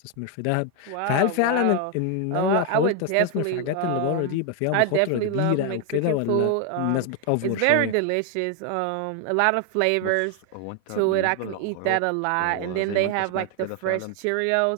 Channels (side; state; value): both; different; correlation 0.01